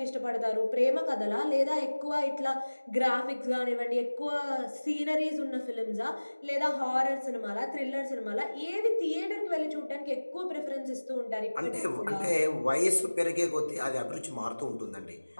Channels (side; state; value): both; inverted; correlation -1.00